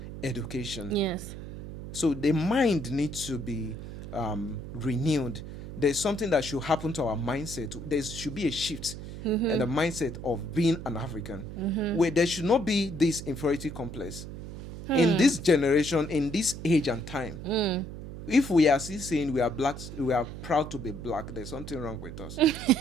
education. Yes. So the mind needs to be renewed. There's something that should happen to our mindset. There should be a shift in the mindset of being an African, where there should not be this inferiority complex. In this generation, in this age and time, if we are still saying we are blacks, we are proud to be black, there's something wrong with us.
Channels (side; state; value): right; noise; hum, 10 dB below the sound